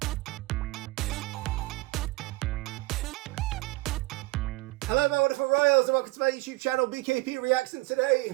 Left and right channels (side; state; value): left; quieter; 21.6 dB